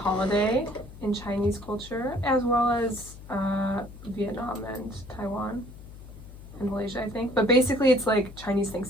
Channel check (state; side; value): noise; left; hum, 16 dB below the sound